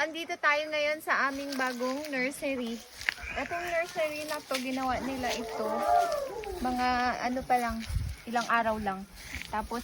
Andito tayo ngayon sa aming bagong nursery. Itong nursery na to, ginawa nila ito. Mga ano pa lang, ilang araw lang. Tapos,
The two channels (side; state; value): both; identical; correlation 1.00